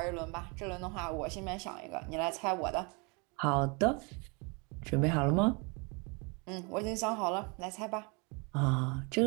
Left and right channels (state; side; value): quieter; left; 31.2 dB